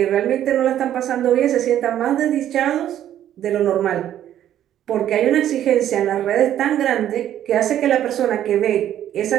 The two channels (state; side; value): quieter; left; 11.3 dB